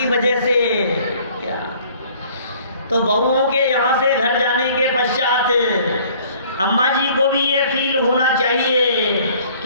वजह से, तो बहुओं के यहाँ से घर जाने के पश्चात अम्मा जी को भी ये फील होना चाहिए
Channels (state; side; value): inverted; both; correlation -0.55